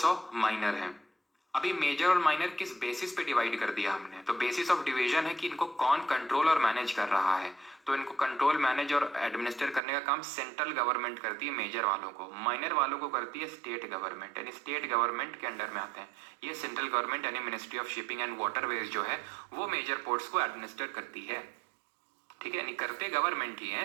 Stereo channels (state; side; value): drops out; left; at 9.8 s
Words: माइनर है। अभी मेजर और माइनर किस बेसिस पे डिवाइड कर दिया हमने? तो बेसिस ऑफ डिवीजन है कि इनको कौन कंट्रोल और मैनेज कर रहा है। तो इनको कंट्रोल, मैनेज और एडमिनिस्टर करने का काम सेंट्रल गवर्नमेंट करती है मेजर वालों को, माइनर वालों को करती है स्टेट गवर्नमेंट, यानी स्टेट गवर्नमेंट के अंडर में आते हैं। ये सेंट्रल गवर्नमेंट यानी ministry of shipping and waterways जो है वो मेजर पोर्ट्स को एडमिनिस्टर करती है, ठीक है, यानी करते गवर्नमेंट ही है।